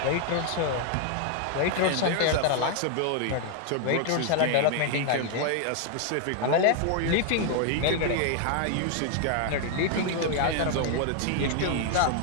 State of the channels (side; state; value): both; different; correlation 0.00